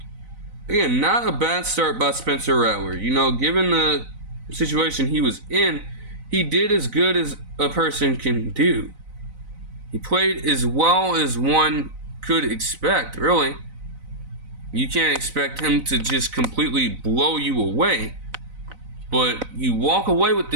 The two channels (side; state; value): left; late; 4.0 ms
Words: Again, not a bad start by Spencer Rattler. Given the situation he was in, he did as good as a person can do. He played as well as one could expect, really. You can't expect him to just completely blow you away. But you walk away with